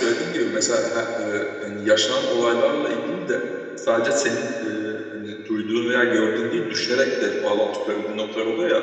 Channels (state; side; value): identical; both; correlation 1.00